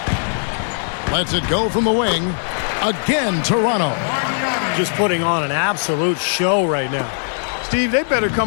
Lets it go from the wing. Again, Toronto. Just putting on an absolute show right now. Steve, they better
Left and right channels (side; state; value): right; silent; 66 dB below the other